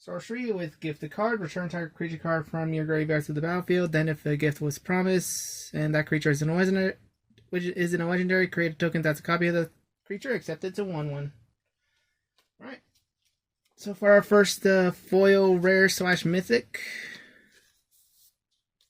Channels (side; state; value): both; identical; correlation 1.00